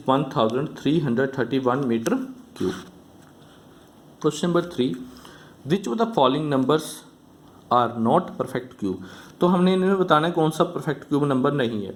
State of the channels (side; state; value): both; identical; correlation 1.00